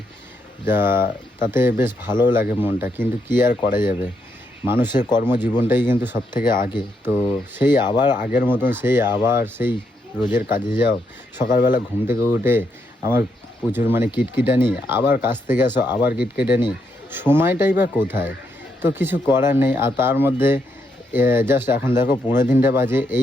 যা তাতে বেশ ভালো লাগে মনটা। কিন্তু কি আর করা যাবে, মানুষের কর্মজীবনটাই কিন্তু সব থেকে আগে। তো সেই আবার আগের মতন সেই রোজের কাজে যাও, সকালবেলা ঘুম থেকে উঠে আমার প্রচুর কিটকিটানি, আবার কাজ থেকে আসো আবার কিটকিটানি, সময়টাই বা কোথায়। তো কিছু করার নেই। আর তার মধ্যে জাস্ট এখন দেখো 15 বাজে,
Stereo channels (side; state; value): both; normal; correlation 0.79